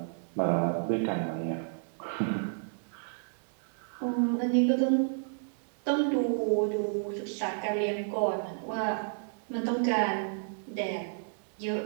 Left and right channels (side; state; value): left; silent; digital silence